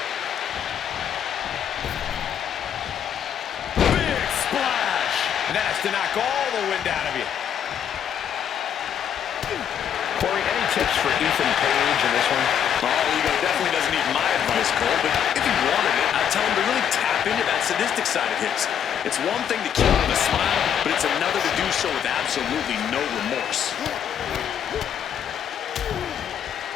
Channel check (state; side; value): quieter; right; 8.8 dB